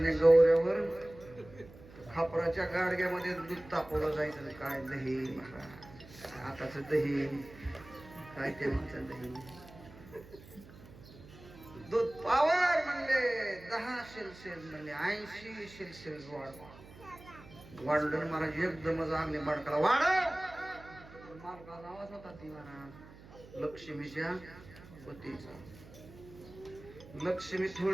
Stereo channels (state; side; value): noise; right; hum, 19 dB below the sound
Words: गौऱ्यावर खापराच्या गाडग्यामध्ये दूध तापवलं जायचं. काय दही महाराज. आताच दही काय ते म्हणतात दही. दूध पावर म्हणले 10 शेल म्हणले 80 शेल वाढलं महाराज. एकदमच आगले बाडकाला वाढव. मालकाचा आवाज होता ती महाराज लक्ष्मीच्या पतीचा. लक्ष्मी